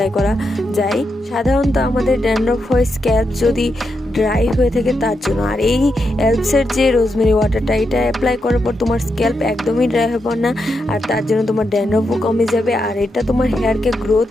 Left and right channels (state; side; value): normal; both; correlation 0.84